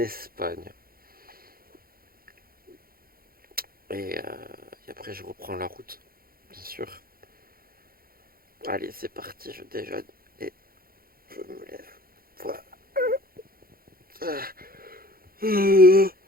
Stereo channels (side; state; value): left; late; 0.43 ms